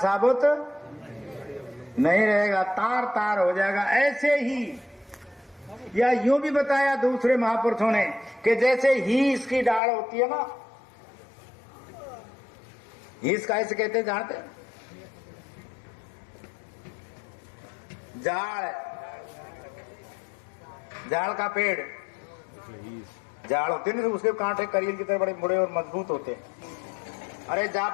नहीं रहेगा, तार तार हो जाएगा। ऐसे ही या यूं भी बताया दूसरे महापुरुषों ने कि जैसे हीस की डाल होती है ना, हीस का ऐसे कहते जानते, जाड़ का पेड़, जाड़ होते नहीं, उसके कांटे करील की तरह बड़े बड़े और मजबूत होते हैं। अरे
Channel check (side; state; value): right; drops out; at 9.8 s